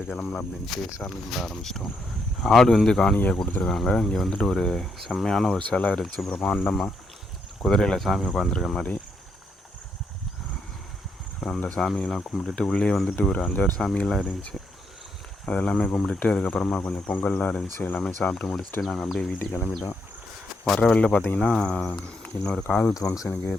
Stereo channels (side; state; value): both; normal; correlation 0.77